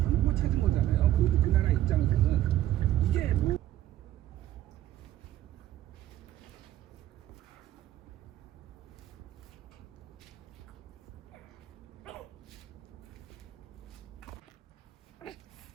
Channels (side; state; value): left; quieter; 13.2 dB